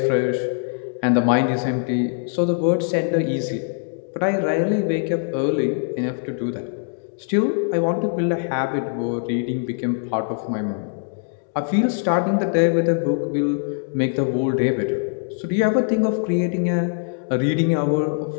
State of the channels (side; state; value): right; silent; digital silence